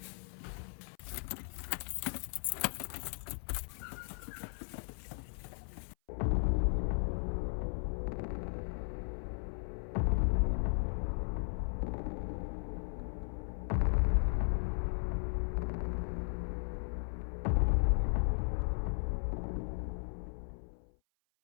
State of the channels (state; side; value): silent; right; 53 dB below the other